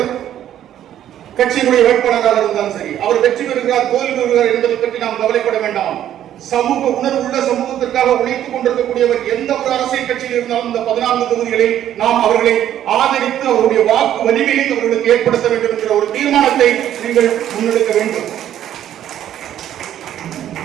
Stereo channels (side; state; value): left; quieter; 11.2 dB